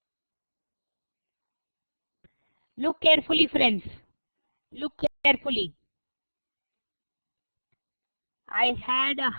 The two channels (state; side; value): inverted; both; correlation -1.00